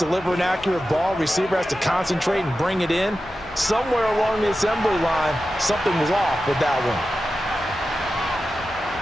an accurate ball. Receiver has to concentrate and bring it in. Somewhere along the assembly line, something was off with that one.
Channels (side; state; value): both; normal; correlation 0.92